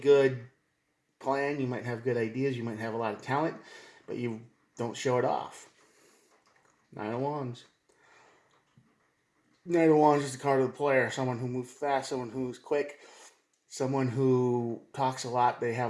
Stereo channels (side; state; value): both; identical; correlation 1.00